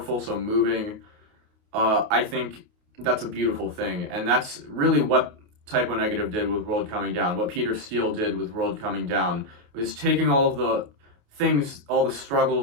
so moving, I think that's a beautiful thing. And that's really what Typo Negative did with World Coming Down, what Peter Steele did with World Coming Down, was taking all of the things, all the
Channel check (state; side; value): late; left; 28 ms